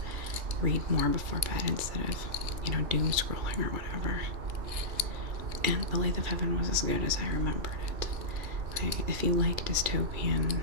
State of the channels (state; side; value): late; left; 2.4 ms